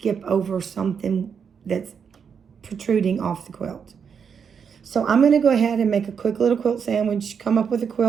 over something that's protruding off the quilt. So I'm going to go ahead and make a quick little quilt sandwich, come up with a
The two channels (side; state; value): left; quieter; 6.8 dB